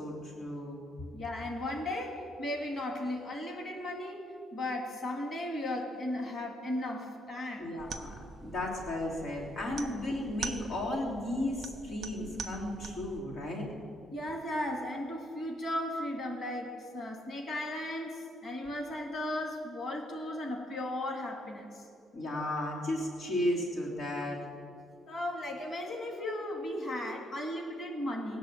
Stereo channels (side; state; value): both; normal; correlation 0.72